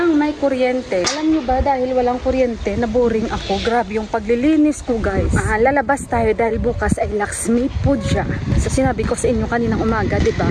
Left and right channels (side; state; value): both; identical; correlation 1.00